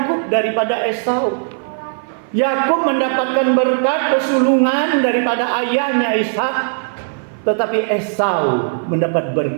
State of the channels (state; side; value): silent; left; 56 dB below the other